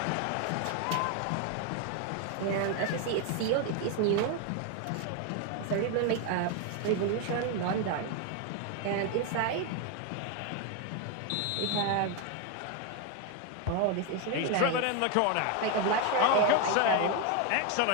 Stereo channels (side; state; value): both; different; correlation 0.01